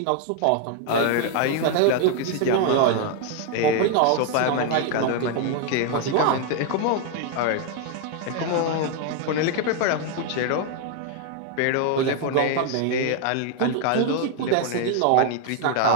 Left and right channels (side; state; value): both; different; correlation 0.01